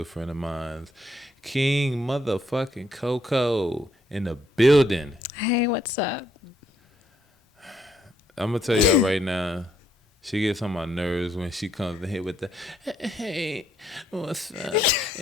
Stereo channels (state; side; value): normal; both; correlation 0.72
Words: friend of mine, King motherfucking COCO in the building. Hey, what's up? I'm gonna tell y'all right now, she gets on my nerves when she comes in here with the hey, what's up?